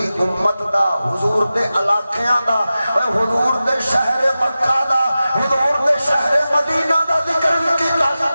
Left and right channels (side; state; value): both; inverted; correlation -0.94